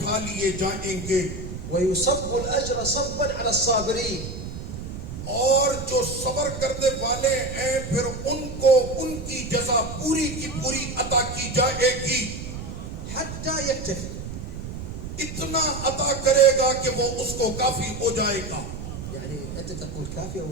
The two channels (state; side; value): noise; right; rumble, 8 dB below the sound